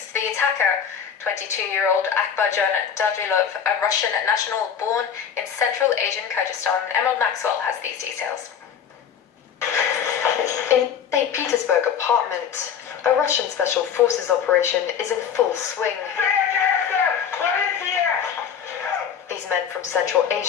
to the attacker. 22-year-old Akbarjon Dadrilov, a Russian national born in Central Asian Kyrgyzstan. Emerald Maxwell has these details. In St. Petersburg apartment, a Russian special forces operation is in full swing. These men from Central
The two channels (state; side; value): quieter; right; 7.9 dB